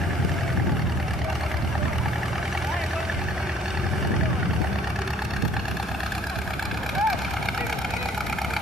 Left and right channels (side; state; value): both; normal; correlation 0.58